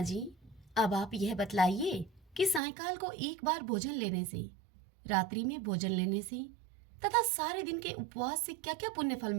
जी, अब आप यह बतलाइए कि सायकाल को एक बार भोजन लेने से, रात्रि में भोजन लेने से तथा सारे दिन के उपवास से क्या क्या पुण्य फल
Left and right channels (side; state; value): left; drops out; at 2.6 s